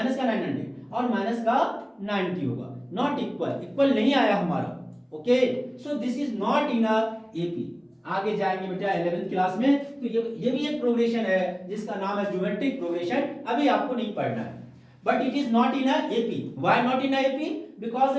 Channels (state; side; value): identical; both; correlation 1.00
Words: का 900 और माइनस का 90 होगा। नॉट इक्वल, इक्वल नहीं आया हमारा। Okay, so this is not in AP. आगे जाएंगे बेटा 11th क्लास में, तो ये भी एक प्रोग्रेशन है जिसका नाम है ज्योमेट्रिक प्रोग्रेशन। अभी आपको नहीं पढ़ना है, but it is not in AP. Why not in AP? Because